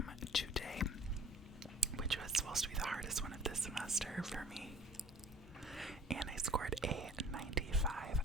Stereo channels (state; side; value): normal; both; correlation 0.50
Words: today, which was supposed to be the hardest one of this semester for me. And I scored a 95